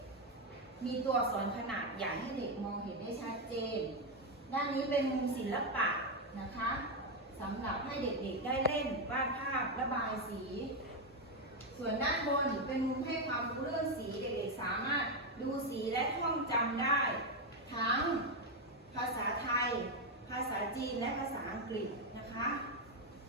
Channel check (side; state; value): both; normal; correlation 0.05